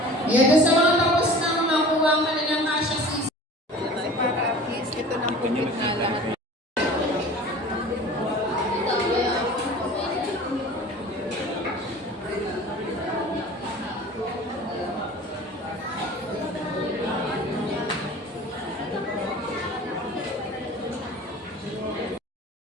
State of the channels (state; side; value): normal; both; correlation 0.42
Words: Yan sa mga tapos nang makuha ang kanilang kasya season. Para at least ito nang commit na lahat.